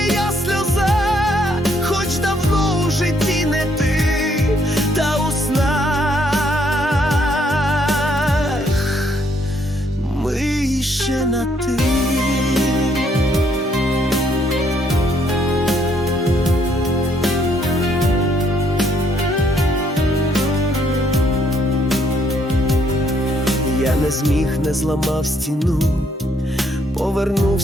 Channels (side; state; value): both; normal; correlation 0.69